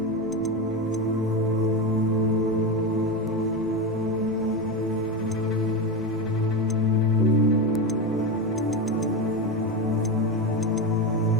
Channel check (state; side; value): noise; left; rumble, 24 dB below the sound